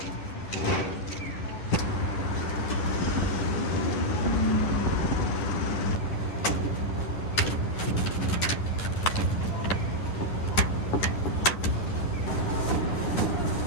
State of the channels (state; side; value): late; right; 10 ms